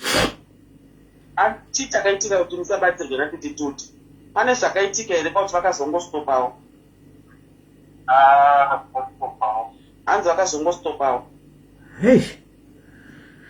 Chii chakaitika kuti musabatsirwe natete Tilda? Pane zvakaitika here pauti vakazongostopawo? Hanzi vakazongostopawo. Hey.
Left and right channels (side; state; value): both; identical; correlation 1.00